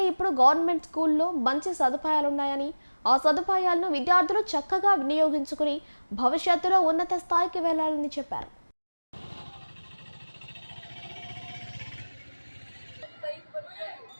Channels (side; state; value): both; inverted; correlation -1.00